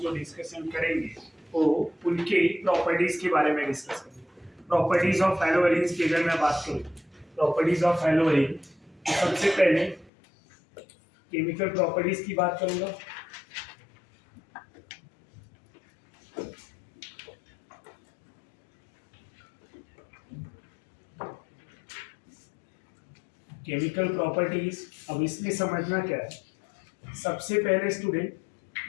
डिस्कशन करेंगे वो उनके प्रॉपर्टीज के बारे में डिस्कस करेंगे। प्रॉपर्टीज ऑफ हैलो अरेंज की अगर मैं बात करूँ, प्रॉपर्टीज ऑफ हैलो अरेंज, तो सबसे पहले केमिकल प्रॉपर्टीज की बात करूंगा। केमिकल प्रॉपर्टीज, अब इसमें समझना क्या है। सबसे पहले स्टूडेंट,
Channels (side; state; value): right; drops out; at 10.1 s